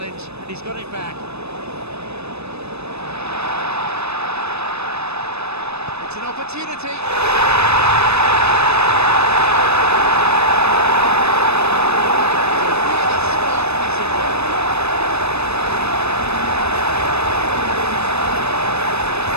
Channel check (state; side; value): late; left; 0.79 ms